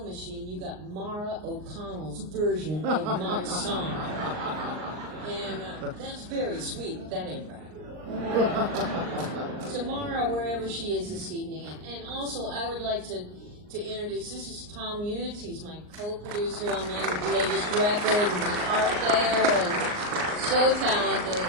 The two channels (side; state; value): left; late; 39 ms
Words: machine, you got Mara O'Connell's version of my song. And that's very sweet, but that ain't right. Tomorrow, wherever she is this evening. And also, I would like to introduce, this is Tom Hughes. He's my co-producer on my latest record and guitar player and so talented